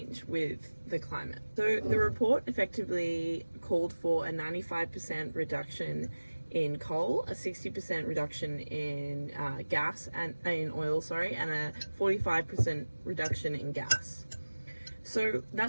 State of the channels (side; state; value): both; inverted; correlation -1.00